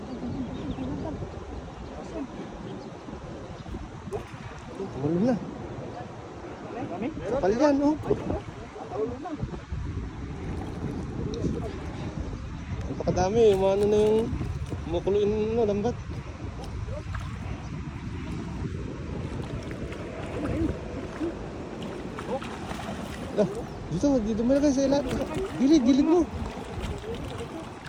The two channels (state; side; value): identical; both; correlation 1.00